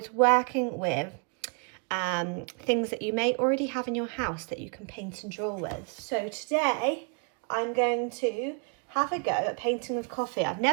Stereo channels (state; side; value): quieter; left; 37.6 dB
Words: working with things that you may already have in your house that you can paint and draw with. So today I'm going to have a go at painting with coffee. I've